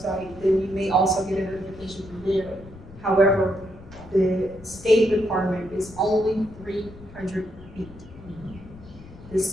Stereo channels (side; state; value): left; noise; rumble, 18 dB below the sound